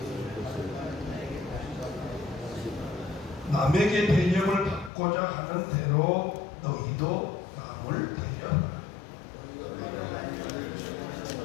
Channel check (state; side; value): drops out; right; at 4.9 s